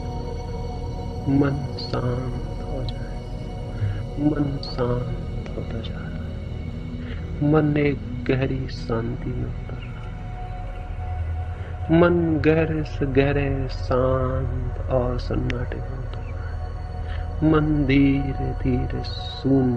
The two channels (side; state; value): both; identical; correlation 1.00